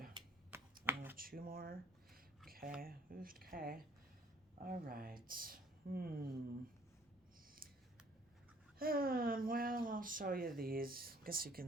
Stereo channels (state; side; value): normal; both; correlation 0.57